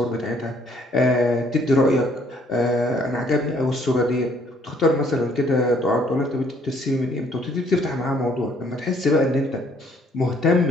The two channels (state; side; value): normal; both; correlation 0.63